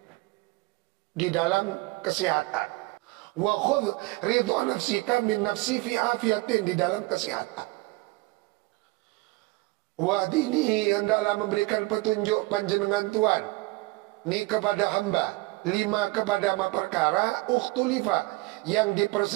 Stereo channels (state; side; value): quieter; left; 22.8 dB